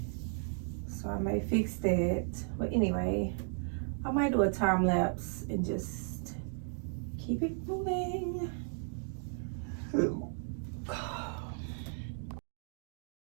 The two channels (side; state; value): left; silent; 54 dB below the other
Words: so I may fix that. But anyway, I might do a time lapse and just keep it moving.